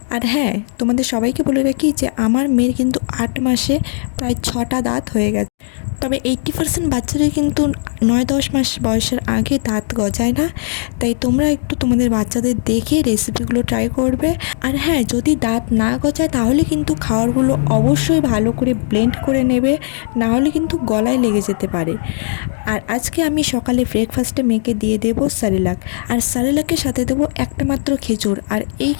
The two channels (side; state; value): right; silent; digital silence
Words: আর হ্যাঁ, তোমাদের সবাইকে বলে রাখি যে আমার মেয়ের কিন্তু 8 মাসে প্রায় 6টা দাঁত হয়ে গেছে। তবে 80% বাচ্চাদের কিন্তু 9-10 মাস বয়সের আগে দাঁত গজায় না। তাই তোমরা একটু তোমাদের বাচ্চাদের দেখে রেসিপিগুলো ট্রাই করবে। আর হ্যাঁ, যদি দাঁত না গজায় তাহলে কিন্তু খাবারগুলো অবশ্যই ভালো করে ব্লেন্ড করে নেবে, না হলে কিন্তু গলায় লেগে যেতে পারে। আর আজকে আমি সকালে ব্রেকফাস্টে মেয়েকে দিয়ে দেবো সারেলাক। আর সারেলাকের সাথে দেবো একটা মাত্র খেজুর। আর এই